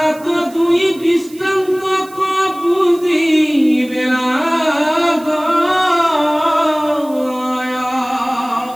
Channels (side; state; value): right; noise; hiss, 22 dB below the sound